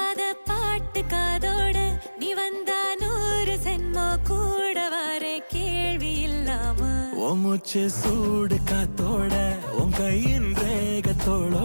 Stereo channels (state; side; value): inverted; both; correlation -1.00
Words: பாட்டு காதோட நீ வந்தா 100 சென்மோ கூட வர கேள்வி இல்லாம மூச்சு சூடு காத்தோட உன் கையின்